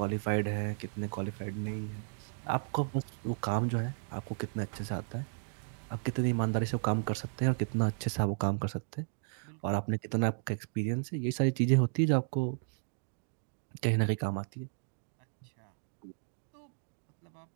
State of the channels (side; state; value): left; silent; digital silence